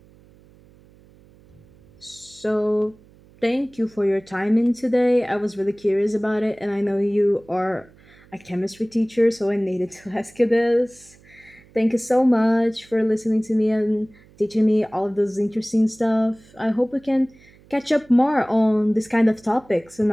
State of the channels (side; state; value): right; noise; hum, 27 dB below the sound